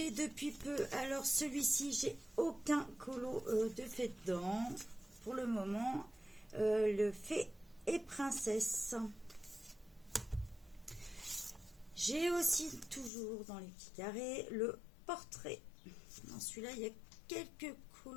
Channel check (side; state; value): right; drops out; at 13.1 s